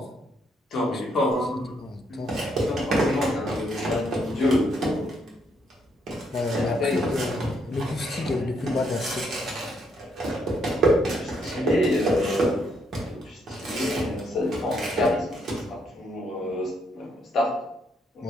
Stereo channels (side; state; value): both; normal; correlation 0.73